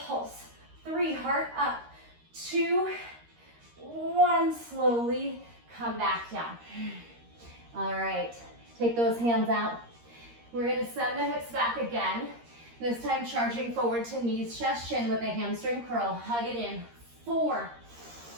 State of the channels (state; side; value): late; left; 13 ms